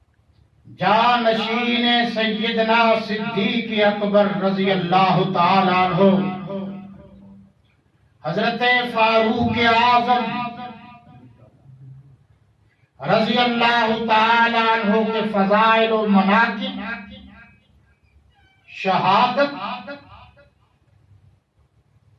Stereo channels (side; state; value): both; identical; correlation 1.00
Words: جانشین سیدنا صدیق اکبر رضی اللہ تعالی عنہ، حضرت فاروق اعظم رضی اللہ تعالی عنہ کے فضائل و مناقب، شہادت